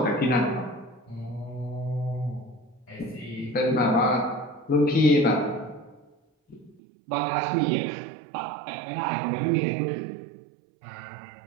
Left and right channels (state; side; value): drops out; left; at 6.8 s